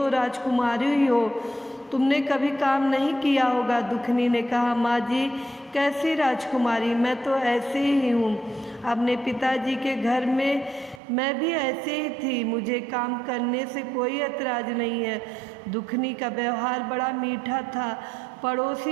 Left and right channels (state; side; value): drops out; left; at 11.0 s